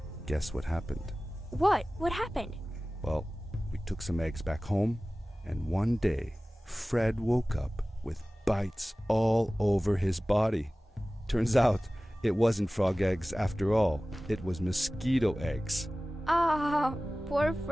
Guess what happened? What? What happened? Well, we took some eggs back home, and one day, Fred woke up with bites all over his body. Turns out, it wasn't frog eggs after all. It was mosquito eggs. Ah, poor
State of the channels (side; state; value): both; normal; correlation 0.97